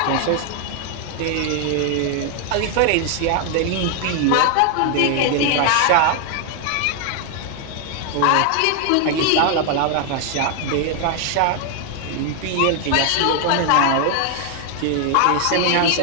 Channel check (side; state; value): both; different; correlation 0.00